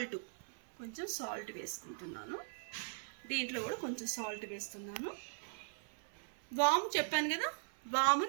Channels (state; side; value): silent; left; 51 dB below the other